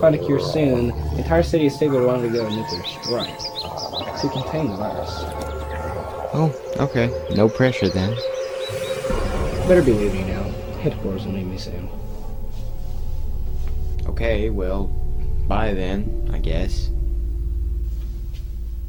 a cure soon, the entire city of Stigler will undergo a nuclear strike to contain the virus. Oh, okay. No pressure then. Better be leaving now. Headquarters will need me soon. Okay, well, bye then, I guess.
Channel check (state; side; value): identical; both; correlation 1.00